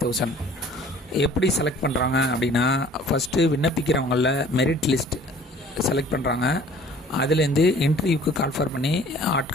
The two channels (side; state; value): both; normal; correlation 0.51